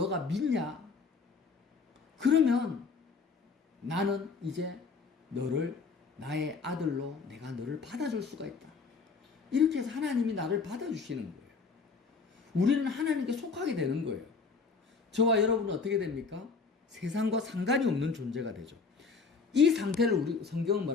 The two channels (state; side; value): quieter; right; 4.8 dB